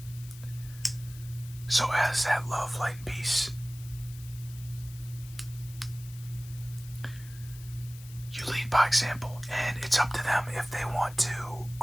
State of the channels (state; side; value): noise; left; hiss, 19 dB below the sound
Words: So as that love, light, and peace, you lead by example, and it's up to them if they want to